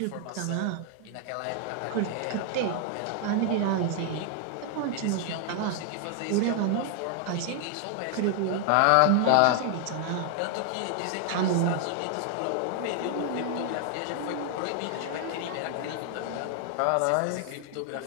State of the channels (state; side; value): different; both; correlation 0.00